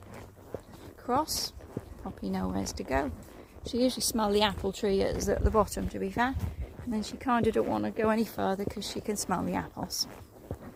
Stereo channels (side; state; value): both; identical; correlation 1.00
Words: cross. Poppy knows to go. She usually smells the apple tree at the bottom, to be fair. And then she kind of don't want to go any further because she can smell the apples.